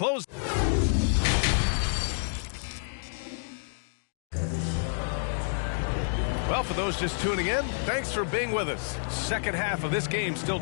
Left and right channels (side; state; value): right; silent; digital silence